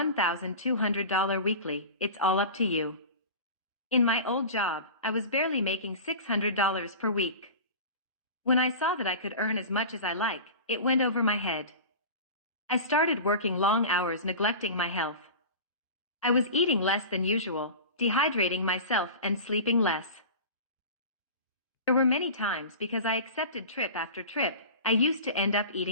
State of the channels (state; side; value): inverted; both; correlation -0.34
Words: weekly, it's all up to you. In my old job, I was barely making $600 per week. When I saw that I could earn as much as I like, it went over my head. I started working long hours neglecting my health. I was eating less than usual, dehydrating myself and sleeping less. There were many times because I accepted trip after trip, I used to end up